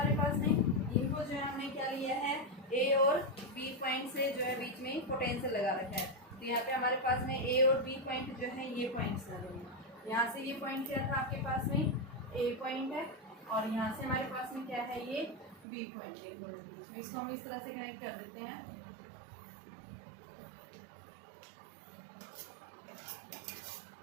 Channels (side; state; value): left; drops out; at 15.7 s